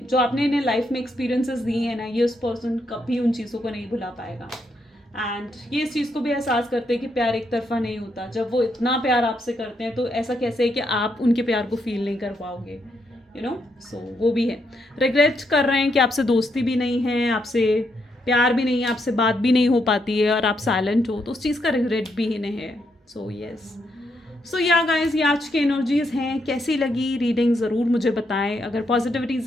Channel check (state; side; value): normal; both; correlation 0.78